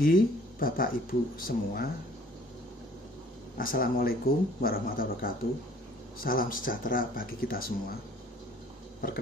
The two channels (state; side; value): normal; both; correlation 0.55